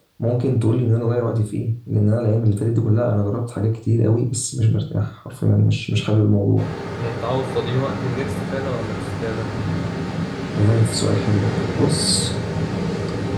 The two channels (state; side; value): identical; both; correlation 1.00